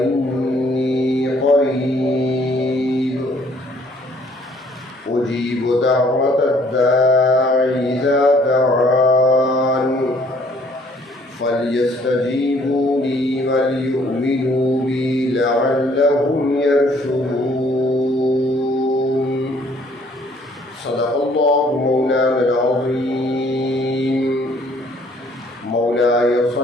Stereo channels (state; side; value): normal; both; correlation 0.61